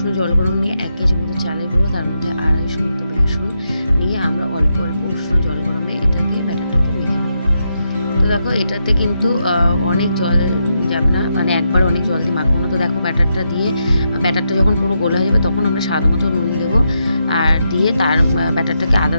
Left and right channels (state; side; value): inverted; both; correlation -0.83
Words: জল গরম নিয়ে 1 কেজি মতো চালের গুঁড়ো, তার মধ্যে 250 মতো বেসন নিয়ে আমরা অল্প অল্প উষ্ণ জল গরমে এটাকে ব্যাটারটাকে মেখে নেব। তো দেখো এটাতে কিন্তু অনেক জল যাবে না, মানে একবার অনেক জল দিয়ে মাখবো না। তো দেখো ব্যাটারটা যখন পুরো গোলা হয়ে যাবে তখন আমরা স্বাদ মতো নুন দেবো, আর দিয়ে তার ব্যাটারটাকে আধা